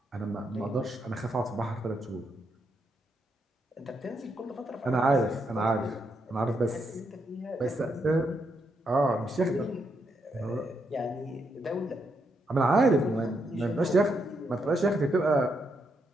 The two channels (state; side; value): normal; both; correlation 0.79